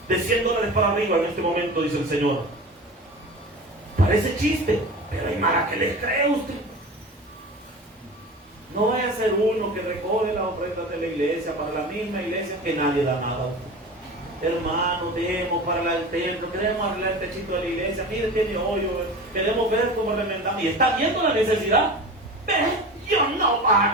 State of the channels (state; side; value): normal; both; correlation 0.33